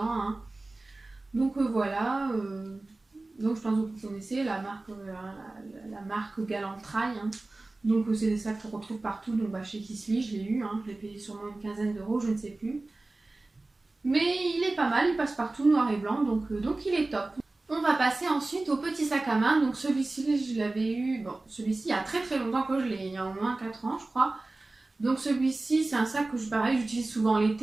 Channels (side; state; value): left; quieter; 3.1 dB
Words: hein. Donc voilà, donc je pense que vous connaissez la marque Galantrail, hein. Donc c'est des sacs qu'on retrouve partout, donc chez Kissly je l'ai eu, hein, je l'ai payé sûrement une quinzaine d'euros, je ne sais plus. Mais il est pas mal, il passe partout noir et blanc, donc il est top. On va passer ensuite au petit sac à main, donc celui-ci je l'avais eu, bon celui-ci il y a très longtemps que je l'ai, il y a au moins 4 ans je crois. Donc celui-ci c'est un sac que j'utilise souvent